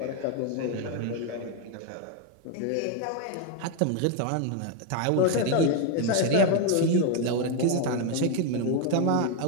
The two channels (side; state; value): both; different; correlation 0.01